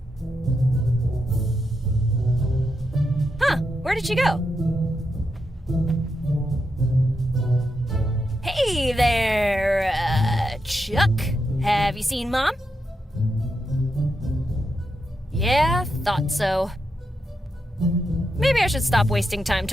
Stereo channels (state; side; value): normal; both; correlation 0.85